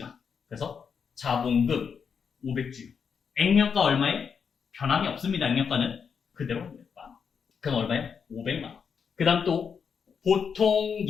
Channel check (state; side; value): quieter; right; 6.5 dB